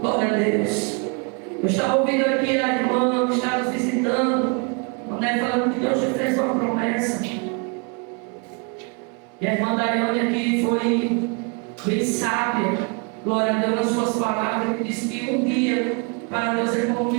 Glória a Deus. Eu estava ouvindo aqui a irmã que está nos visitando, falando que Deus te fez uma promessa. E a irmã Daiane aqui foi bem sábia, glória a Deus, nas suas palavras, que disse que um dia para Deus é como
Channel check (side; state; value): left; quieter; 33.3 dB